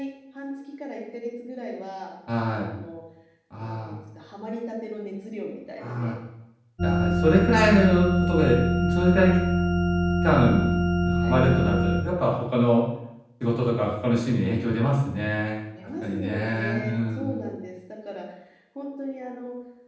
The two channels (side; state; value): both; identical; correlation 1.00